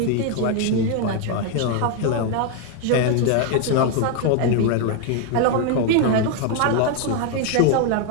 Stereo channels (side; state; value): both; different; correlation 0.01